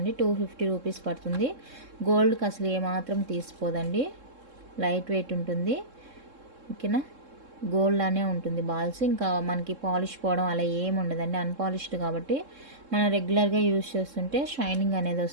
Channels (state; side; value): late; left; 3.7 ms